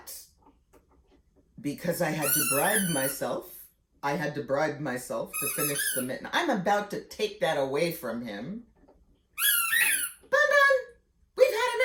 because I had to bribe myself to finish the mitten. I'm about to take that away from him. Bun, we've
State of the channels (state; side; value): identical; both; correlation 1.00